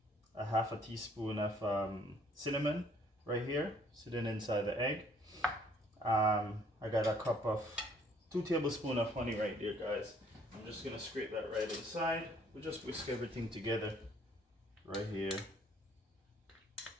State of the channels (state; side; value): normal; both; correlation 0.61